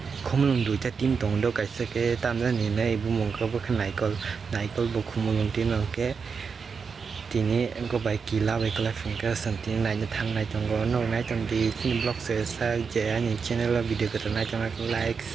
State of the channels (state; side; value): quieter; left; 5.6 dB